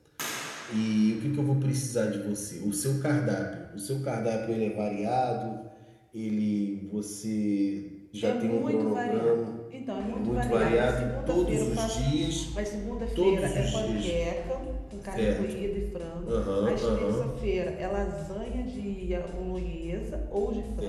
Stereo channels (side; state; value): both; identical; correlation 1.00